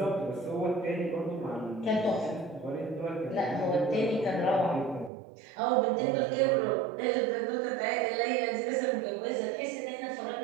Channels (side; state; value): left; drops out; at 5.1 s